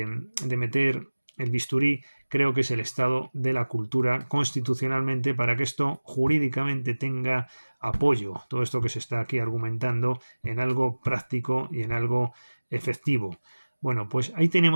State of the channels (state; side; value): inverted; both; correlation -1.00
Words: meter el bisturí creo que es el estado de la cultura constitucionalmente para que esto jurídicamente tenga apoyo, todo esto que se está aquí argumentando, en algo práctico y en algo efectivo. Bueno, pues ahí